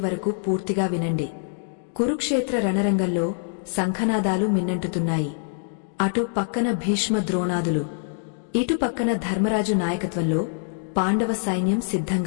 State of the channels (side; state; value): right; silent; digital silence